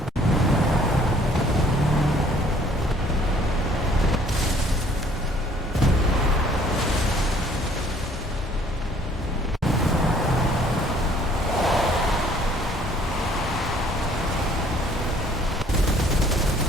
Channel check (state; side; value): normal; both; correlation 0.58